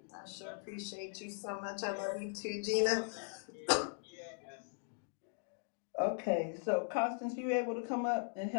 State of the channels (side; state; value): right; silent; digital silence